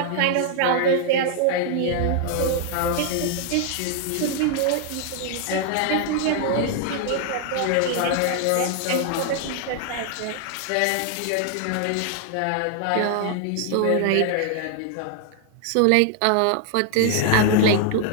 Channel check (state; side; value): different; both; correlation 0.00